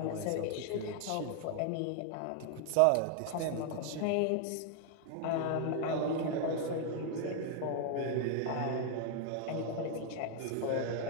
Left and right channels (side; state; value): both; different; correlation 0.00